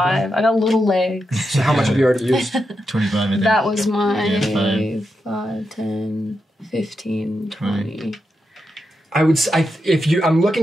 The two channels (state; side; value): normal; both; correlation 0.86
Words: I got little legs. So how much have you already used? 25, I think. That was my Yeah, 5, 10, 15, 20. I would say, I'm